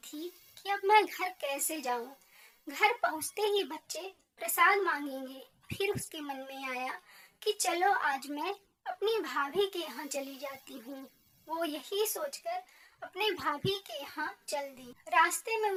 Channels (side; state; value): both; identical; correlation 1.00